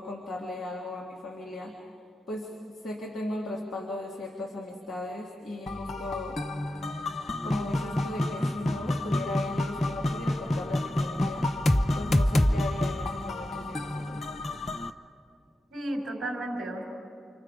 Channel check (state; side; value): normal; both; correlation 0.90